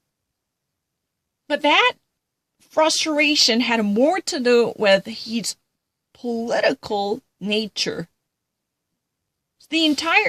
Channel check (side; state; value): both; identical; correlation 1.00